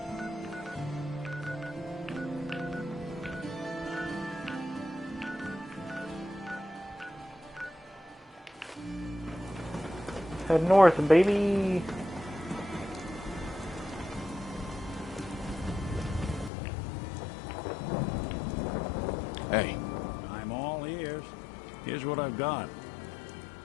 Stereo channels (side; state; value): right; drops out; at 16.5 s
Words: Head north, baby. Hey. I'm all ears. Here's what I've got.